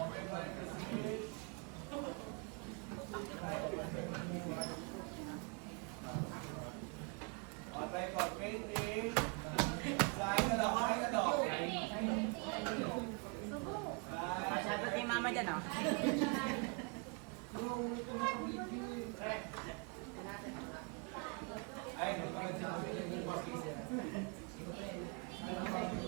parenthesis. Try ko, 20. Saan ka daw? Saan ka daw? mama dyan, oh. Ay, nagpapagod siya kasi yung bukas kasi.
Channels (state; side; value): quieter; left; 33.1 dB